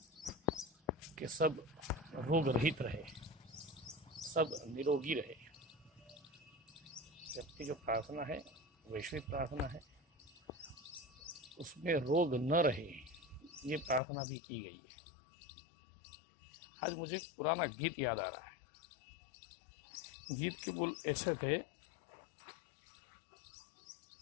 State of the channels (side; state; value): right; drops out; at 14.0 s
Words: कि सब रोग रहित रहे, सब निरोगी रहे। जबकि जो प्रार्थना है वैश्विक प्रार्थना है, उसमें रोग न रहे ये प्रार्थना भी की गई है। आज मुझे एक पुराना गीत याद आ रहा है। गीत के बोल ऐसे थे,